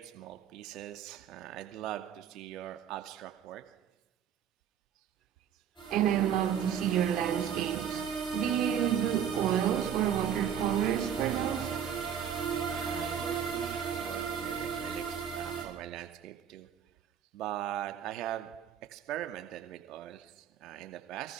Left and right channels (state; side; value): quieter; left; 8.7 dB